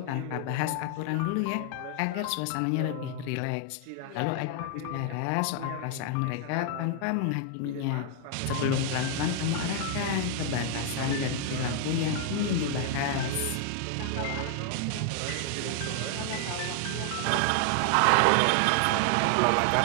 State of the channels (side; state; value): both; different; correlation 0.00